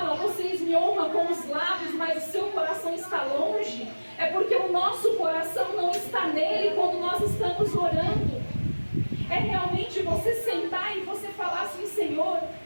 vocês me honram com os lábios, mas o seu coração está longe, é porque o nosso coração não está nele quando nós estamos orando. É realmente você sentar e você falar assim: Senhor,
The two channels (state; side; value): inverted; both; correlation -1.00